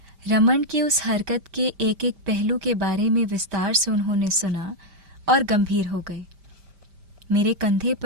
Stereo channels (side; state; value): left; late; 5.1 ms